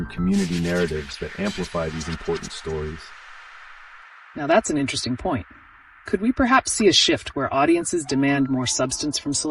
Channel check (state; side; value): identical; both; correlation 1.00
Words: community narratives that amplify these important stories? Now that's an interesting point. Could we perhaps see a shift where audiences demand more substance from